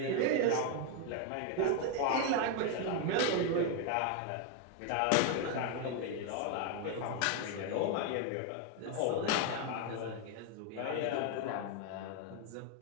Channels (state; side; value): different; both; correlation 0.01